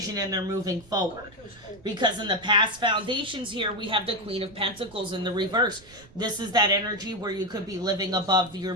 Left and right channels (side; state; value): right; noise; rumble, 24 dB below the sound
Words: and they're moving forward. Because in the past foundations here, we have the Queen of Pentacles in the reverse. This is that energy where you could be living above your